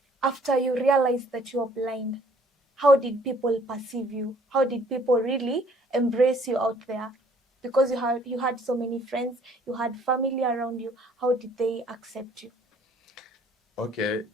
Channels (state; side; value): normal; both; correlation 0.59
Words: after you realized that you are blind, how did people perceive you? How did people really embrace you out there? Because you had so many friends, you had family around you. How did they accept you? Okay,